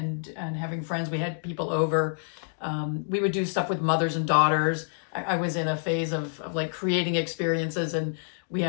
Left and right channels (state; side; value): silent; right; digital silence